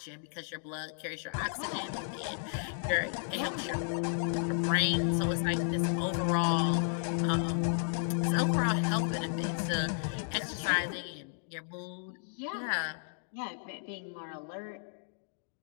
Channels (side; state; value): right; silent; digital silence